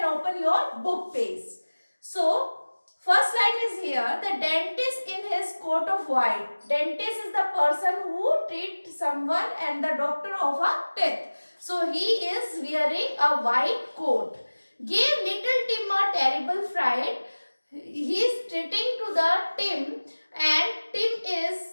open your book page. So first line is here, the dentist in his coat of white. Dentist is the person who treats someone and the doctor of a teeth. So he is wearing a white coat. Gave little Tim a terrible fright. He is treating to the Tim and Tim is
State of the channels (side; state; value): both; inverted; correlation -1.00